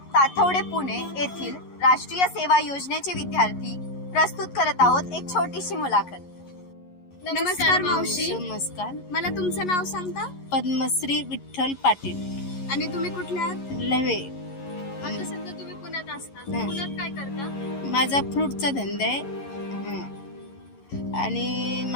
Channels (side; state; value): right; late; 11 ms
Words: ताथवडे पुणे येथील राष्ट्रीय सेवा योजनेचे विद्यार्थी प्रस्तुत करत आहोत एक छोटीशी मुलाखत. नमस्कार मावशी. नमस्कार. मला तुमचं नाव सांगता? पद्मश्री विठ्ठल पाटील, आणि तुम्ही कुठल्या आहात? लवे. आता सध्या तुम्ही पुण्यात असता. हं. पुण्यात काय करता? माझा फ्रूटचा धंदा आहे. आणि